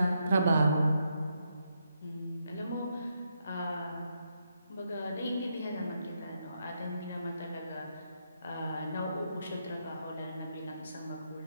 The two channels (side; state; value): both; inverted; correlation -0.80